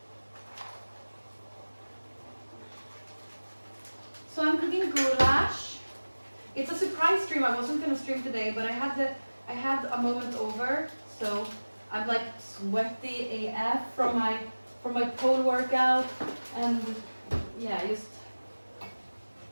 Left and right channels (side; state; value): both; inverted; correlation -1.00